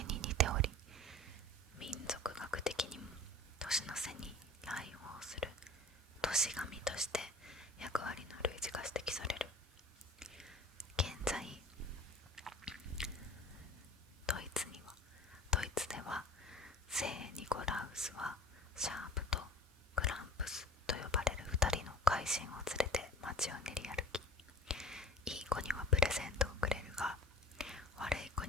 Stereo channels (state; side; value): normal; both; correlation 0.42